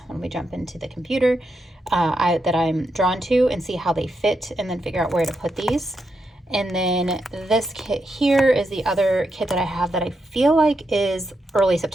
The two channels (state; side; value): normal; both; correlation 0.84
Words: when we jump into the computer, that I'm drawn to, and see how they fit, and then figure out where to put these. And then this kit here is the other kit that I have that I feel like is early